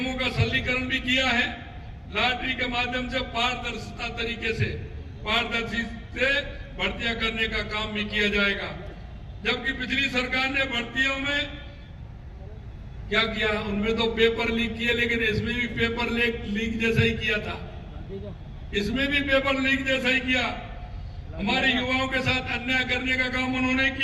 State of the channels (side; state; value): both; identical; correlation 1.00